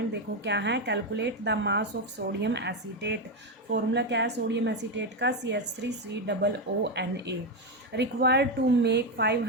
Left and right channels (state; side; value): normal; both; correlation 0.08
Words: देखो क्या है। Calculate the mass of sodium acetate. Formula क्या है सोडियम एसीटेट का? CH3COONA। Required to make